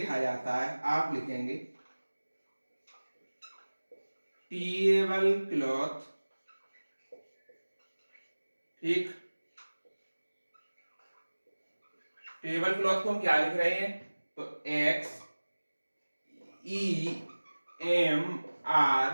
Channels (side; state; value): both; inverted; correlation -1.00